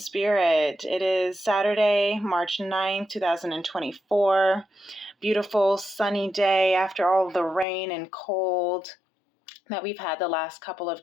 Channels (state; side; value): drops out; right; at 7.7 s